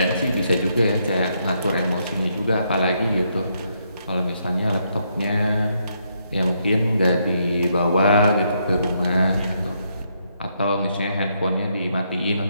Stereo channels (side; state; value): both; inverted; correlation -0.76